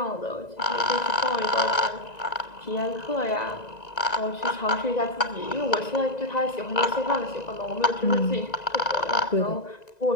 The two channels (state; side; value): late; right; 1.9 ms